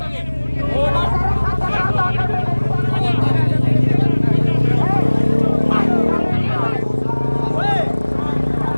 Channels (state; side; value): inverted; both; correlation -1.00